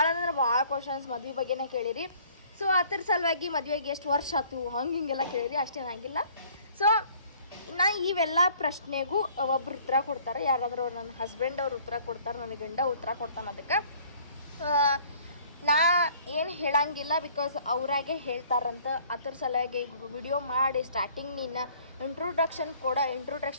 ಅಂದ್ರೆ ಭಾಳ ಕ್ವಶನ್ಸ್ ಮದುವೆ ಬಗ್ಗೆನೇ ಕೇಳಿರಿ. ಸೊ ಅದ್ರ ಸಲುವಾಗಿ ಮದುವೆಗೆ ಎಷ್ಟು ವರ್ಷ ಆಯ್ತು ಹಿಂಗೆಲ್ಲ ಕೇಳಿರಿ. ಅಷ್ಟೇನಾಗಿಲ್ಲ. ಸೊ ನಾ ಇವೆಲ್ಲ ಪ್ರಶ್ನೆಗೂ ಒಬ್ರು ಉತ್ತರ ಕೊಡ್ತಾರೆ. ಯಾರಾದರೂ ನನ್ನ ಹಸ್ಬೆಂಡ್ ಅವ್ರು ಉತ್ತರ ಕೊಡ್ತಾರೆ, ನನ್ನ ಗಂಡ ಉತ್ತರ ಕೊಡ್ತಾನೆ. ಅದಕ್ಕೆ ನಾ ಏನು ಹೇಳಂಗಿಲ್ಲ, ಬಿಕಾಸ್ ಅವರಾಗೆ ಹೇಳ್ತಾರಂತ. ಅದ್ರ ಸಲುವಾಗಿ ಈಗ ವಿಡಿಯೋ ಮಾಡಿ ಸ್ಟಾರ್ಟಿಂಗ್ ನಿನ್ನ ಇಂಟ್ರೊಡಕ್ಷನ್ ಕೂಡ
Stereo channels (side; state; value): both; inverted; correlation -0.56